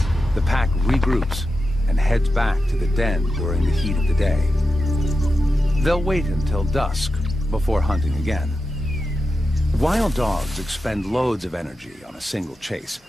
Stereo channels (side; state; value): both; normal; correlation 0.90